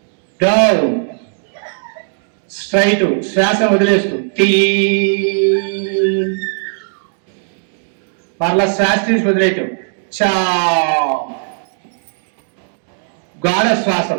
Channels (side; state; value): left; silent; digital silence